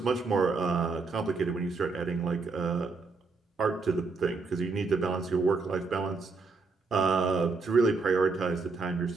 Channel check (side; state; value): left; quieter; 4.2 dB